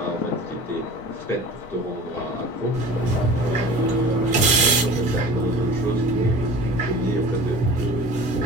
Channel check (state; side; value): normal; both; correlation 0.40